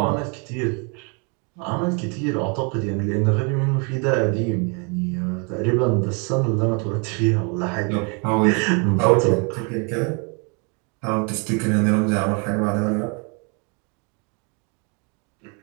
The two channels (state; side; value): quieter; left; 34.9 dB